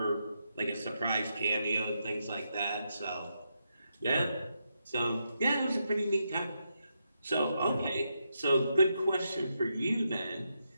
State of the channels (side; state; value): both; inverted; correlation -0.82